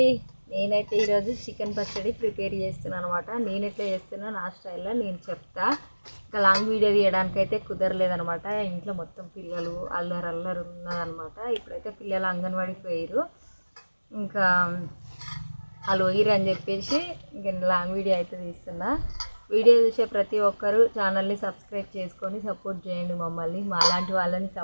నేనైతే ఈరోజు చికెన్ పచ్చడి ప్రిపేర్ చేస్తున్నాను అనమాట. నేను ఎట్లా చేస్తున్నా నా స్టైల్లో నేను చెప్తా. ఇంకా లాంగ్ వీడియో తీయడానికి అయితే కుదరలేదనమాట. ఇంట్లో మొత్తం పిల్లలు అల్లరు ఉన్నదనమాట. ఇప్పుడైతే పిల్లలు అంగన్వాడికి పోయారు. ఇంకా వాళ్ళు పోయిరు అని చెప్పేసి ఇంకా లాంగ్ వీడియో అయితే తీస్తున్నా. వీడియో చూసే ప్రతి ఒక్కరు ఛానల్ని సబ్స్క్రైబ్ చేసుకొని సపోర్ట్ చేయండి. మమ్మల్ని మాలాంటి వాళ్ళని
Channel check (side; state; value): both; inverted; correlation -1.00